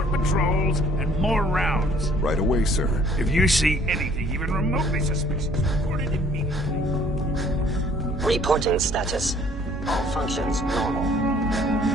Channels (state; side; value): normal; both; correlation 0.58